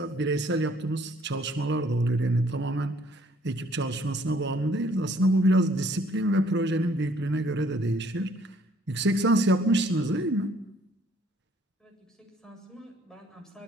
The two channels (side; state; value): both; normal; correlation 0.61